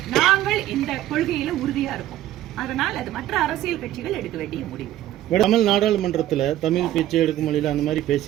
நாங்கள் இந்த கொள்கையில உறுதியா இருக்கோம். அதனால் அது மற்ற அரசியல் கட்சிகள் எடுக்க வேண்டிய முடிவு. தமிழ் நாடாளுமன்றத்தில் தமிழ் பேச்சு எடுக்கும் மொழியில் அந்த மாதிரி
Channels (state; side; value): quieter; left; 13.5 dB